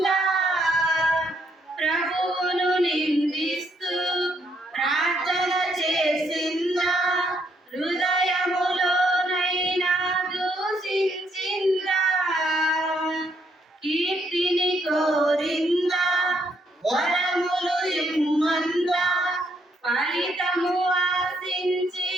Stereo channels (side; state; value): both; normal; correlation 0.73